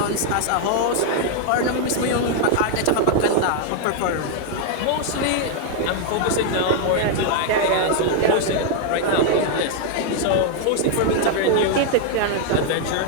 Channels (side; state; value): both; different; correlation 0.00